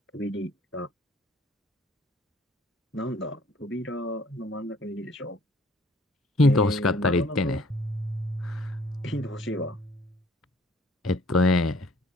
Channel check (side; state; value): both; normal; correlation 0.57